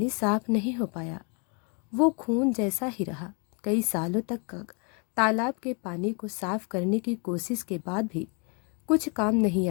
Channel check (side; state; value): right; quieter; 35.9 dB